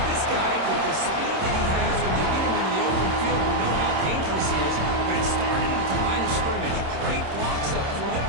This guy, with the speed that he has, when you get him into the open field, we know how dangerous he is, but it started at the line of scrimmage. Great blocks up front,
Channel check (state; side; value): late; left; 26 ms